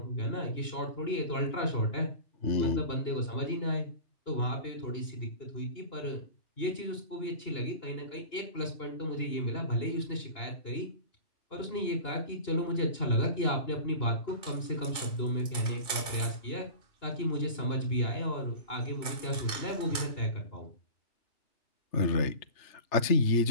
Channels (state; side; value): late; right; 2.8 ms